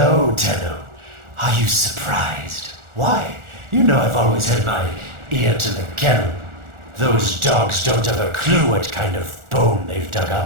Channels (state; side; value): late; left; 1.4 ms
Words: Tenno. Are you surprised? Why? You know I've always had my ear to the kennel. Those dogs don't have a clue what kind of bone they've dug